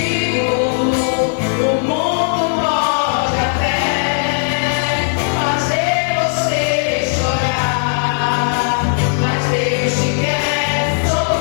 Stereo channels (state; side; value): silent; right; digital silence